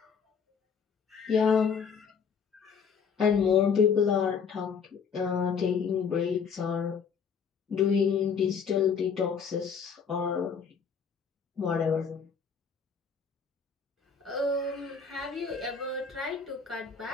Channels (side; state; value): right; quieter; 6.3 dB